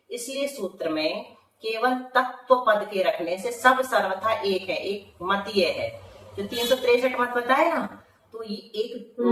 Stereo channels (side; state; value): both; identical; correlation 1.00